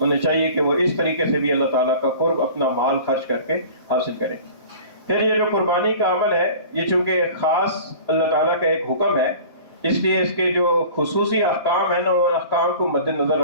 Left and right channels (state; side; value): inverted; both; correlation -0.42